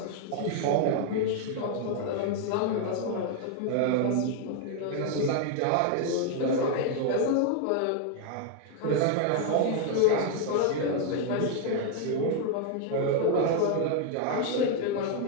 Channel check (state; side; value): different; both; correlation 0.00